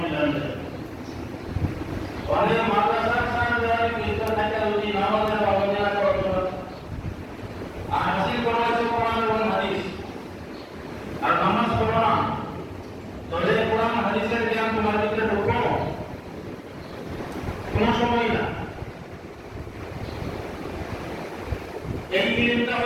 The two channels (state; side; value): identical; both; correlation 1.00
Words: অনেক মাদ্রাসার সাথে ভিতর থেকে যদি নামাজের পাবন্দি না করা আর হাসিল করা হয়েছে কোরআন এবং হাদিস আর নামাজ পড়া না তাহলে কোরআন হাদিসের জ্ঞান তোমার ভিতরে ঢুকো কোনো সময় না এই ইলমটা